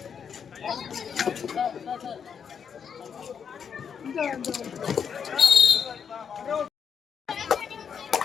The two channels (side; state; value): right; quieter; 7.1 dB